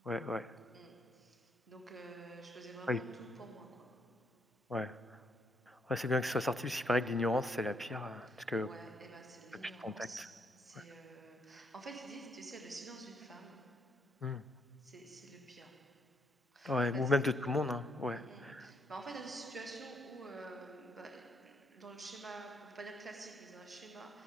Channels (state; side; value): normal; both; correlation 0.73